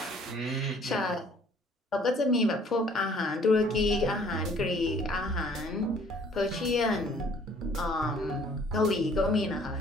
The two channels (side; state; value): both; normal; correlation 0.57